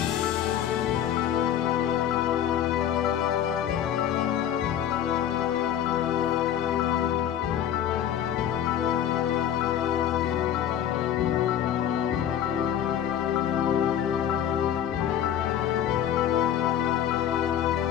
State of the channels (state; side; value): quieter; right; 10.2 dB